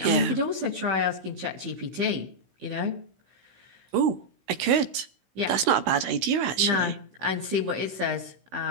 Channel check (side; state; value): left; late; 16 ms